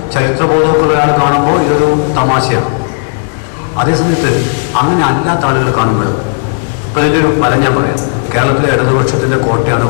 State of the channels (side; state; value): right; silent; 71 dB below the other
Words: ചരിത്രബോധവും ഒക്കെ ഒരാൾ കാണുമ്പോൾ ഇതൊരു തമാശയാണ്. അതേസമയത്ത് അങ്ങനെ അല്ലാത്ത ആളുകൾ കാണുമ്പോൾ ഇപ്പോൾ ഇതിൻ്റെ ഒരു ഫലം ഞാൻ പറയാം. കേരളത്തിലെ ഇടതുപക്ഷത്തിൻ്റെ കോട്ടയാണ്